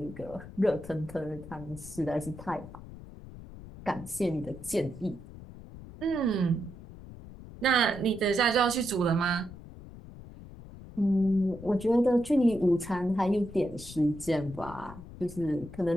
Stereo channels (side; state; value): left; noise; rumble, 15 dB below the sound